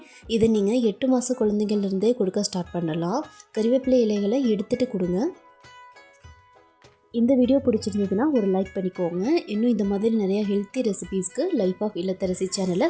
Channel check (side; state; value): both; identical; correlation 1.00